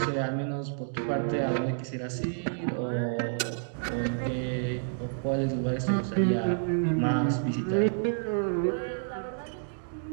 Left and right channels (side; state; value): left; silent; digital silence